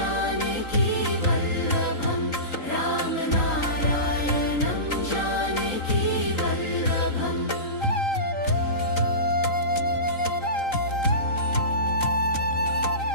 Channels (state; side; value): late; right; 3.8 ms